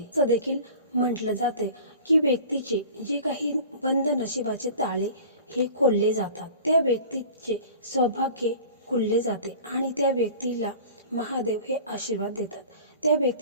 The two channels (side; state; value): both; inverted; correlation -0.41